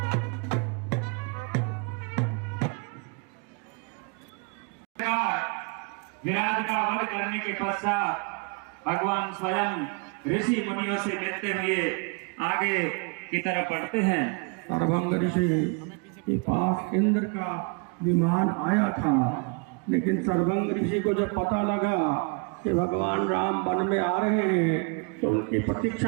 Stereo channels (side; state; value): left; quieter; 34.0 dB